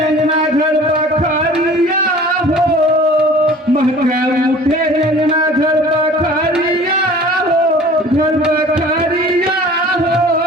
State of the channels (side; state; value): both; normal; correlation 0.46